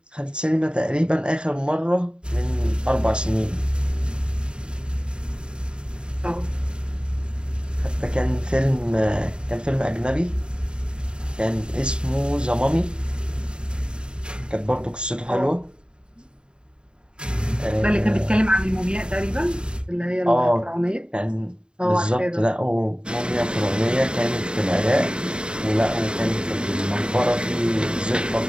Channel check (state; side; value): late; left; 0.050 ms